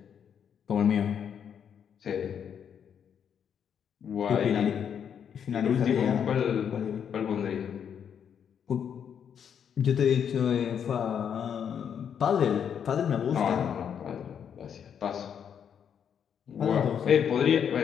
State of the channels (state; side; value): quieter; right; 8.1 dB